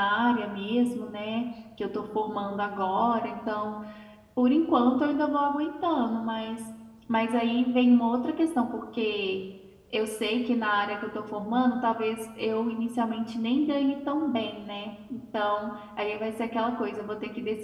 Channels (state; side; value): identical; both; correlation 1.00